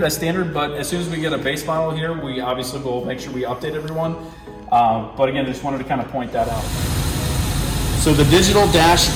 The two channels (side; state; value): both; identical; correlation 1.00